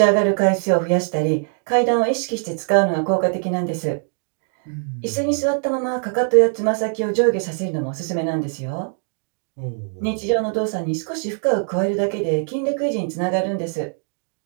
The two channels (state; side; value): silent; left; 57 dB below the other